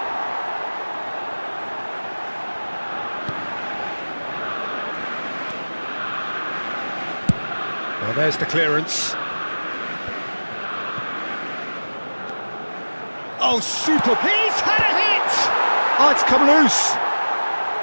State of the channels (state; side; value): inverted; both; correlation -1.00